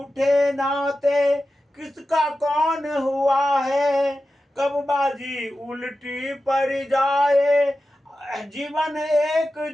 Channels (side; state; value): both; normal; correlation 0.93